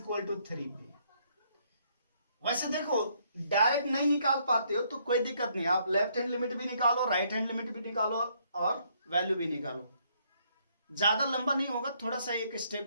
टू 3 पे। वैसे देखो डायरेक्ट नहीं निकाल पाते हो तो कोई दिक्कत नहीं, आप लेफ्ट हैंड लिमिट भी निकालो, राइट हैंड लिमिट भी निकालो और वैल्यू भी निकालो। ज्यादा लंबा नहीं होगा, थोड़ा सा एक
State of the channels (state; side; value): inverted; both; correlation -0.69